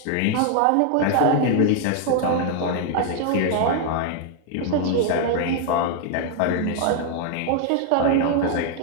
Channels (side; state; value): both; different; correlation 0.00